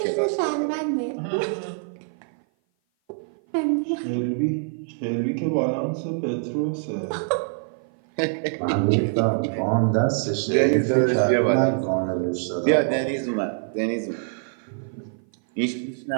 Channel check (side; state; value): left; silent; 56 dB below the other